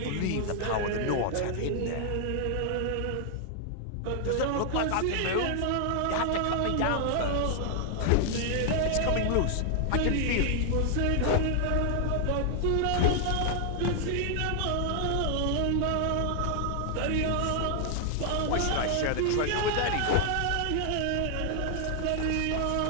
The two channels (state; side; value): different; both; correlation 0.00